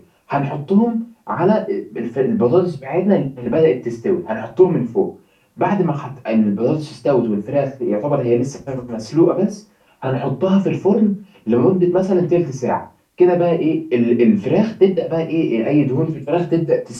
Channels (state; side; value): identical; both; correlation 1.00